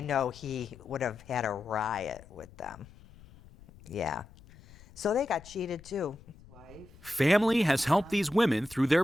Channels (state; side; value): noise; left; rumble, 22 dB below the sound